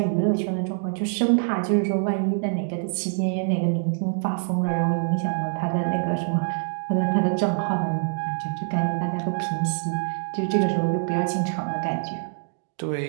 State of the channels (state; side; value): silent; left; 62 dB below the other